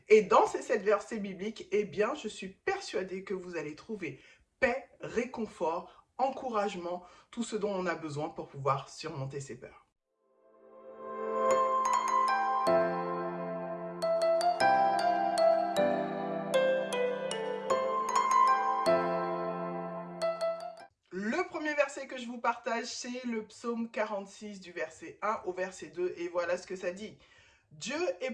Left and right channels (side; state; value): both; identical; correlation 1.00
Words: Et dans ces 7 versets bibliques, eh bien, je suis persuadée que vous allez trouver paix, réconfort, encouragement, tout ce dont on a besoin pour pouvoir surmonter ses peurs. Le premier verset que je vous partage, c'est le psaume 46 du verset 1 au verset 2. Et voilà ce que ça dit. Dieu est